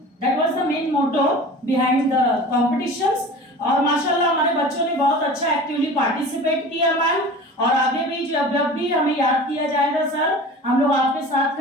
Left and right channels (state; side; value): normal; both; correlation 0.38